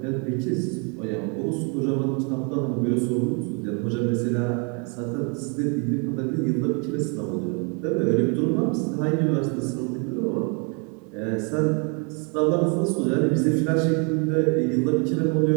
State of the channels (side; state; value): left; quieter; 35.6 dB